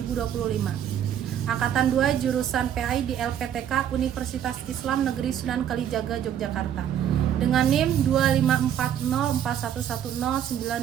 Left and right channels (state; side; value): quieter; left; 9.9 dB